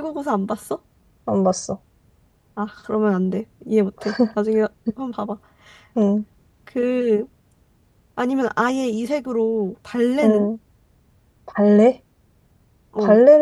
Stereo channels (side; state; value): both; identical; correlation 1.00